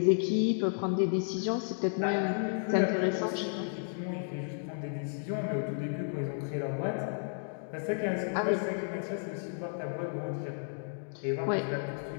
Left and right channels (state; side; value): silent; right; digital silence